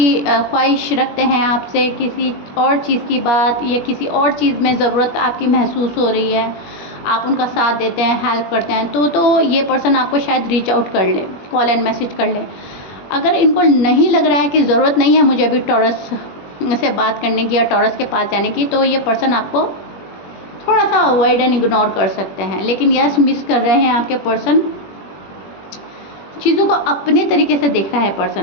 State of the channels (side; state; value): right; late; 21 ms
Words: ख्वाहिश रखते हैं आपसे, किसी और चीज़ की बात या किसी और चीज़ में ज़रूरत आपकी महसूस हो रही है, आप उनका साथ देते हैं, हेल्प करते हैं, तो ये पर्सन आपको शायद रीच आउट कर ले, कॉल एंड मैसेज कर ले। अगर इनको नहीं लग रहा है कि ज़रूरत नहीं है मुझे अभी टॉरस से बात करने की या टॉरस के पास जाने की, तो ये पर्सन आपको थोड़ा सा अवॉइड एंड इग्नोर कर सकते हैं। लेकिन यस, मिस कर रहे हैं आपके पर्सन, चीज़ों को अपने तरीके से देख रहा है